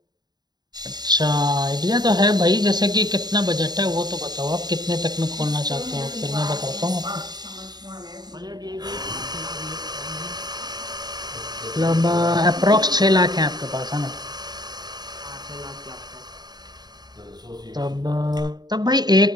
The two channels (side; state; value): left; late; 0.20 ms